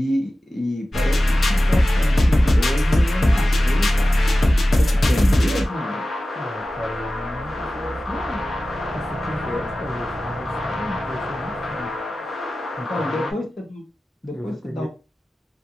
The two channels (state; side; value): normal; both; correlation 0.95